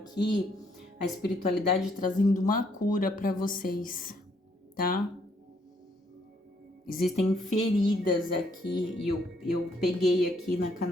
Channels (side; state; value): both; normal; correlation 0.70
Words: a espiritualidade trazendo uma cura para vocês, tá? Existem feridas aqui, e eu peguei aqui na